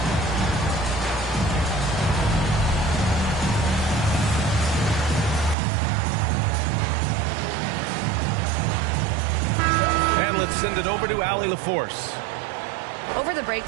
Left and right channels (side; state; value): left; drops out; at 5.6 s